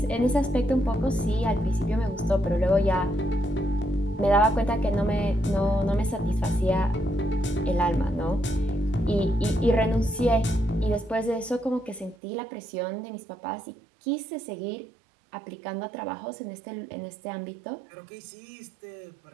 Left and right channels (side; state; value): left; drops out; at 12.2 s